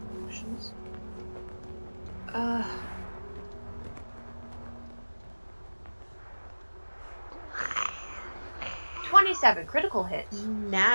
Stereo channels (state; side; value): inverted; both; correlation -1.00